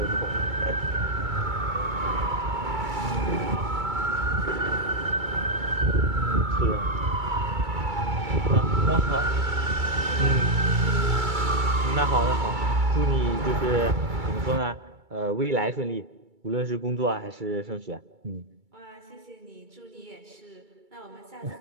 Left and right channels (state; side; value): late; left; 2.3 ms